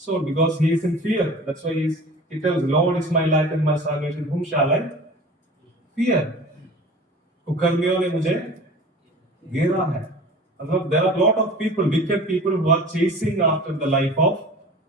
because he is in fear. That's why he tells, Lord is my light and my salvation. Whom shall I fear? कुकर्मियों ने मुझे घेरा है. मतलब there are a lot of people, wicked people who are chasing after the life of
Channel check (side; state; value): both; normal; correlation 0.40